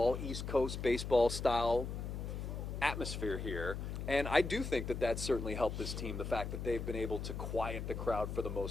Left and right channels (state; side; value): noise; left; hum, 5 dB below the sound